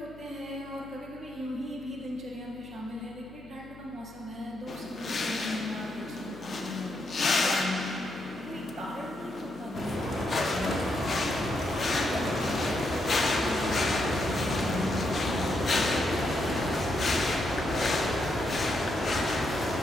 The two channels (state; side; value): noise; left; hum, 20 dB below the sound